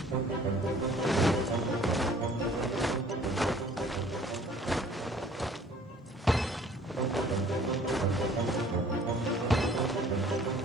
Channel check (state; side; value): normal; both; correlation 0.54